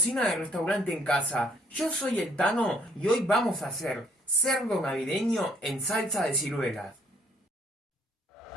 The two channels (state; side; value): normal; both; correlation 0.65